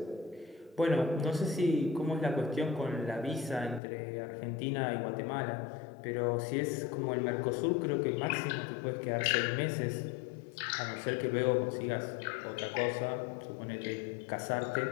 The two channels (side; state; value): right; drops out; at 3.8 s